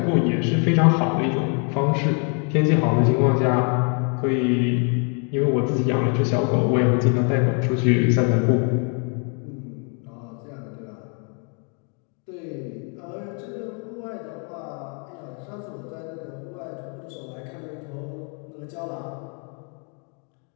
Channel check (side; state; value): right; quieter; 39.3 dB